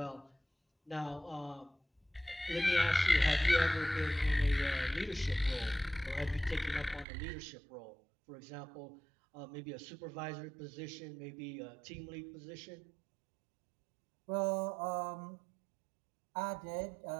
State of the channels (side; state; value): left; drops out; at 7.1 s